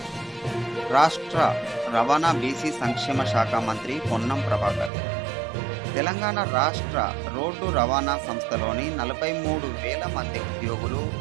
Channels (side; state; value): left; drops out; at 4.9 s